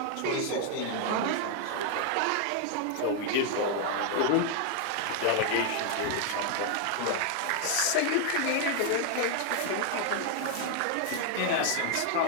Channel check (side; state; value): both; different; correlation 0.00